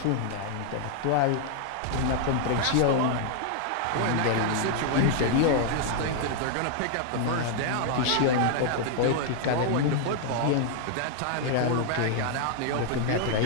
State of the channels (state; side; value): different; both; correlation 0.00